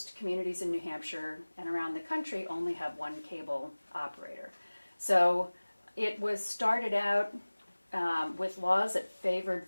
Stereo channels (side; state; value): both; inverted; correlation -1.00